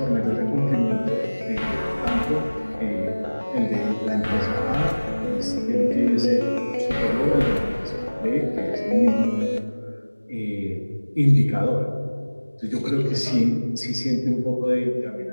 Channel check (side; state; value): both; inverted; correlation -1.00